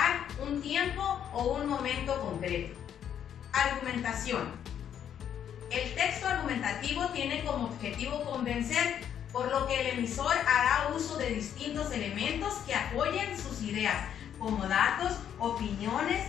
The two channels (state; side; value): quieter; right; 9.3 dB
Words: un tiempo o un momento concreto. Argumentación. El texto argumentativo tiene como objetivo convencer, por lo que el emisor hará uso de distintos elementos que apoyen sus ideas, como datos, opiniones,